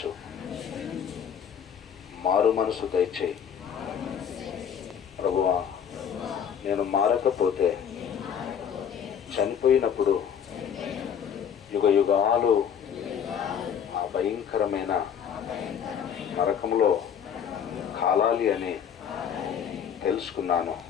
మారు మనసు దయచేయి. ప్రభువా, నేను మారకపోతే చనిపోయినప్పుడు యుగ యుగాలు ఆ భయంకరమైన నరకంలో కాలాలి అని తెలుసుకున్నాను.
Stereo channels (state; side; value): quieter; right; 8.1 dB